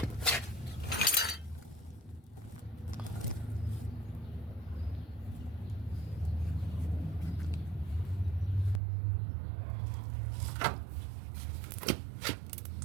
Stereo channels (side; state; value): left; drops out; at 8.8 s